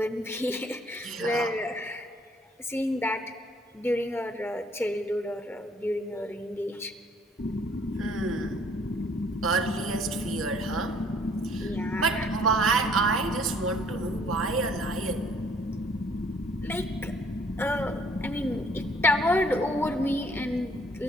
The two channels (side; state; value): both; normal; correlation 0.61